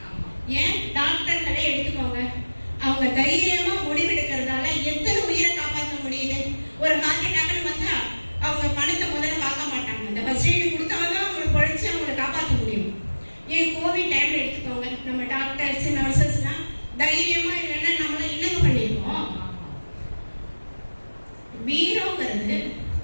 ஏன் டாக்டர்களே எடுத்துக்கோங்க, அவங்க தைரியமா முடிவெடுக்கிறதால எத்தனை உயிரை காப்பாற்ற முடியுது. ஒரு ஹார்ட் அட்டாக்னு வந்தா அவங்க பணத்தை முதல்ல பார்க்க மாட்டாங்க, அந்த ஃபர்ஸ்ட் எய்டு கொடுத்தாதான் அவங்களை பொழைச்சு அவங்களை காப்பாற்ற முடியும். ஏன் கோவிட் டைம்ல எடுத்துக்கோங்க, நம்ம டாக்டர்ஸ் நர்சஸ்லாம் தைரியமா இல்லைன்னா நம்மள என்னங்க பண்ணிருக்கோம். வீரங்கிறது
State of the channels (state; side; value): inverted; both; correlation -1.00